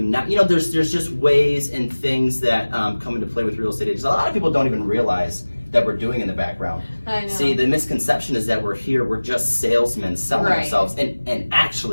not, there's just ways and things that come into play with real estate agents. A lot of people don't even realize that we're doing in the background. I know. See, the misconception is that we're here, we're just salesmen selling ourselves. And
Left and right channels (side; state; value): both; inverted; correlation -1.00